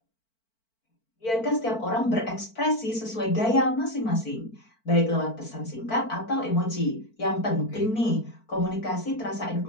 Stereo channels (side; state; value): right; late; 4.5 ms